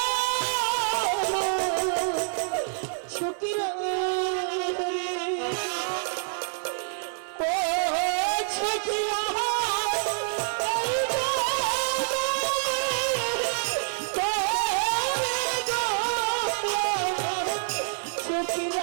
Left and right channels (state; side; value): silent; left; 60 dB below the other